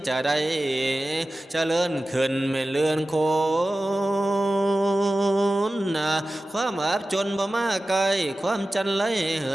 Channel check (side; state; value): both; normal; correlation 0.95